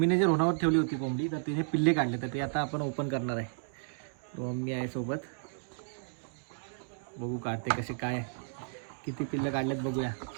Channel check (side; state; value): left; silent; digital silence